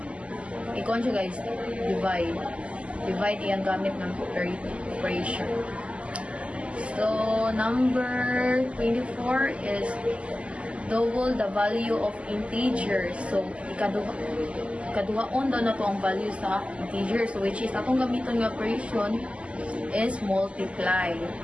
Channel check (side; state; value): left; late; 0.058 ms